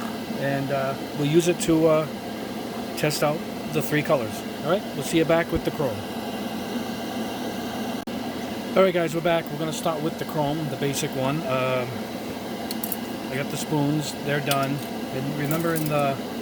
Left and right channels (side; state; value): both; identical; correlation 1.00